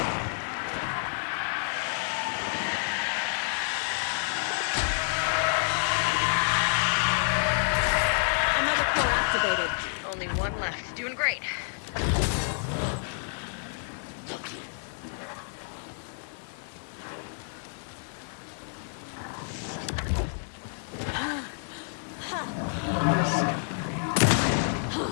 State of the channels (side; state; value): right; silent; digital silence